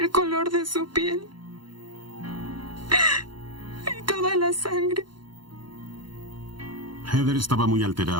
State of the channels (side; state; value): left; late; 0.72 ms